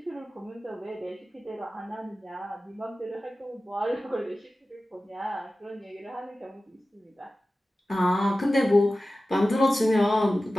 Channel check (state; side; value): normal; both; correlation 0.95